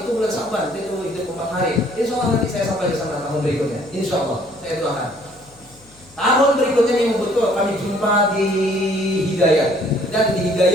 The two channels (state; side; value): noise; left; hum, 27 dB below the sound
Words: bulan Saban. Itu hidup 4 hari. Insya Allah nanti saya sampai ke sana tahun berikutnya. Insya Allah saya doakan. Tahun berikutnya yang betul kami jumpa di Hidayat, dan di